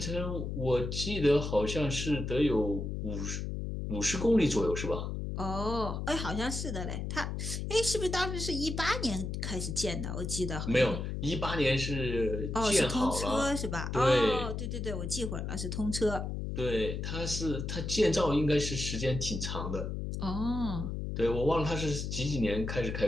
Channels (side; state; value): left; noise; hum, 4 dB below the sound